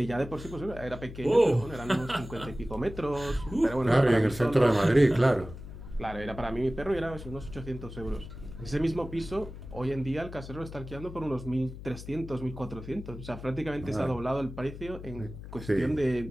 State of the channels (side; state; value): left; noise; hum, 12 dB below the sound